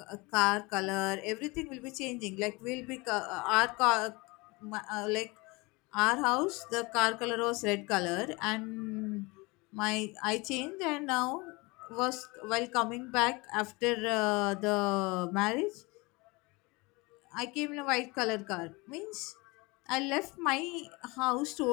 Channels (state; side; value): quieter; right; 25.3 dB